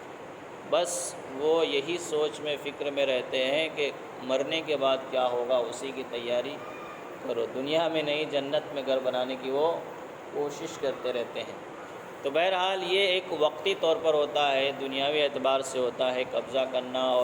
بس وہ یہی سوچ میں فکر میں رہتے ہیں کہ مرنے کے بعد کیا ہوگا، اسی کی تیاری کرو، دنیا میں نہیں جنت میں گھر بنانے کی وہ کوشش کرتے رہتے ہیں۔ تو بہرحال یہ ایک وقتی طور پر ہوتا ہے، دنیاوی اعتبار سے ہوتا ہے قبضہ کرنا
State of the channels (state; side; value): identical; both; correlation 1.00